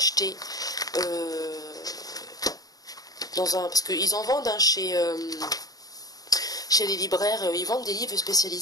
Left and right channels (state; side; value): late; right; 0.18 ms